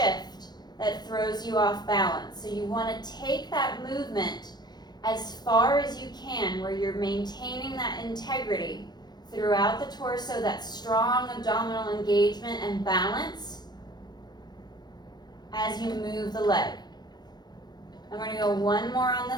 that throws you off balance. So you want to take that movement as far as you can where you're maintaining that integrity throughout the torso, that strong abdominal engagement and balance as you move the leg. I'm going to go one more on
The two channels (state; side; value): late; right; 0.20 ms